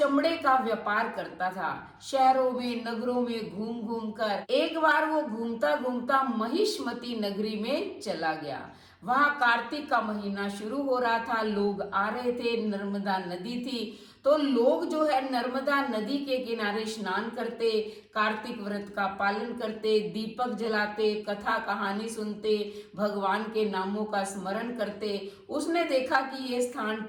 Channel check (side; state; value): both; identical; correlation 1.00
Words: का व्यापार करता था। शहरों में, नगरों में घूम घूम कर एक बार वो घूमता घूमता महिष्मती नगरी में चला गया। वहां कार्तिक का महीना शुरू हो रहा था, लोग आ रहे थे, नर्मदा नदी थी, तो लोग जो है नर्मदा नदी के किनारे स्नान करते, कार्तिक व्रत का पालन करते, दीपक जलाते, कथा कहानी सुनते, भगवान के नामों का स्मरण करते। उसने देखा कि ये स्थान